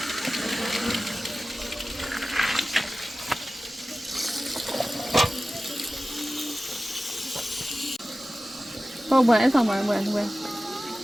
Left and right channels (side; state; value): both; normal; correlation 0.95